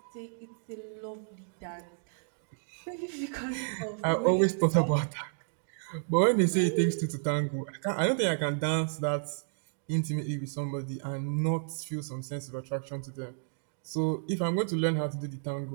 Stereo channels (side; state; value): left; silent; digital silence